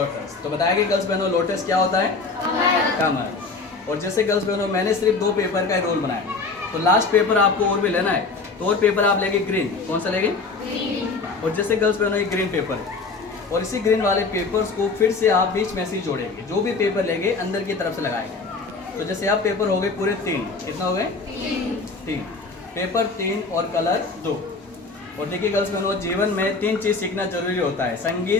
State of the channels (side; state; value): right; quieter; 4.0 dB